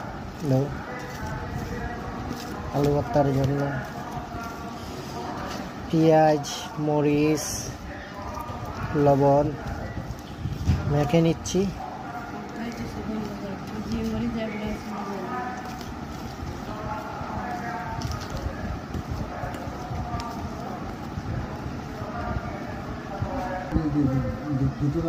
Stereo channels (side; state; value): both; identical; correlation 1.00